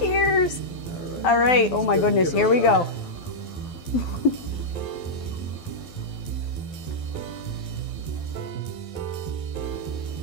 All right. Oh my goodness, here we go.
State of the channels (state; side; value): late; right; 12 ms